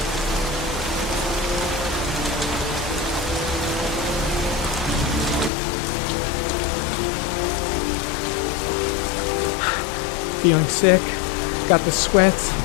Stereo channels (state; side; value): drops out; right; at 5.5 s